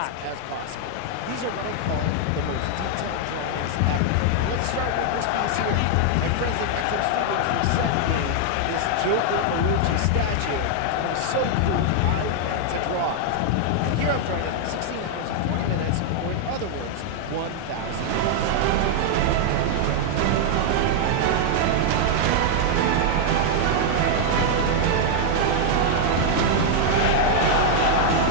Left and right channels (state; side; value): different; both; correlation 0.00